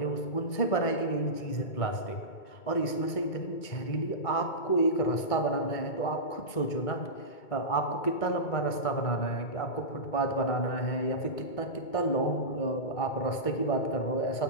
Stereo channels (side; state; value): right; late; 2.2 ms